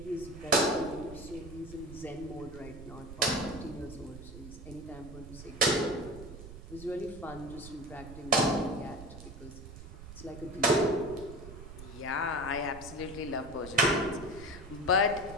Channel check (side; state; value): right; noise; rumble, 13 dB below the sound